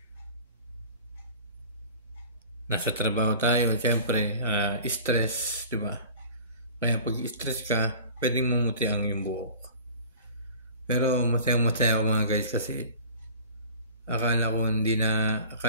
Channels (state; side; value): inverted; both; correlation -0.43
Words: nasa trabaho tayo, siyempre, stress, di ba? Kaya pag stress ka, pwedeng mumuti ang iyong buhok. Pero masaya ako mga guys kasi akala